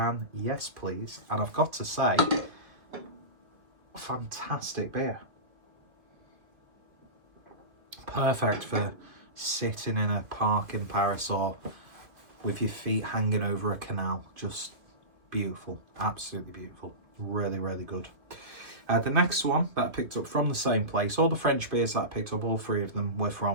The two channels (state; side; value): late; left; 2.4 ms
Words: yes please. And I've got to say, fantastic beer. Perfect for sitting in a park in Paris or with your feet hanging over a canal. Just beautiful, absolutely beautiful. Really, really good. The next one that I picked up from the same place, all the French beers that I picked up, all three of them were